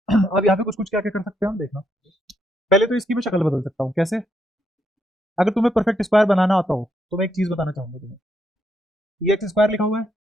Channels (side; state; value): both; normal; correlation 0.77